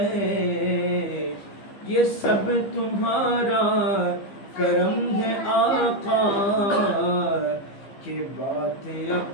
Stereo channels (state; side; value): late; right; 15 ms